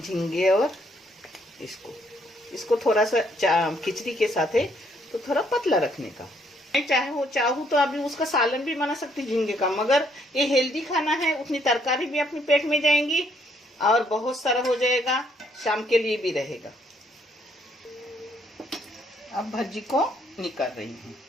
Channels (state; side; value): normal; both; correlation 0.69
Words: और इसको थोड़ा सा खिचड़ी के साथ है तो थोड़ा पतला रखने का। मैं चाहूँ तो अभी उसका सालन भी बना सकती झींगे का, मगर ये हेल्दी खाना है, उतनी तरकारी भी अपने पेट में जाएंगी और बहुत सारा हो जाएगा, शाम के लिए भी रहेगा। अब भज्जी को निकाल रही हूँ।